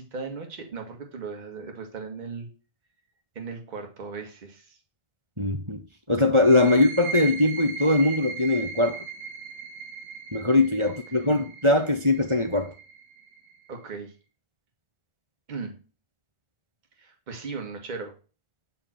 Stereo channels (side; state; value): left; late; 1.4 ms